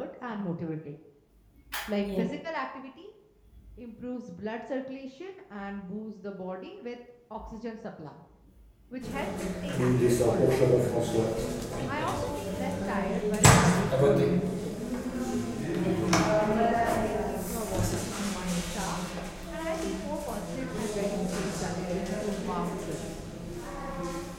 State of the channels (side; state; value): both; identical; correlation 1.00